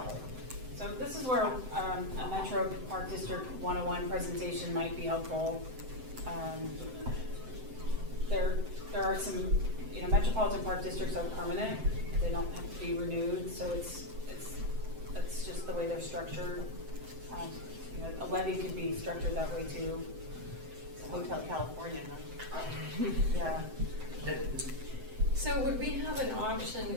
So this is where a Metro Park District 101 presentation might be helpful. There are some, Metropolitan Park Districts are permanent. They don't have to be renewed, so that's just the way they're structured. A levy could be structured that way too. Hotel California, huh? Yeah. So would we have an option,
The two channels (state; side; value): late; left; 7.8 ms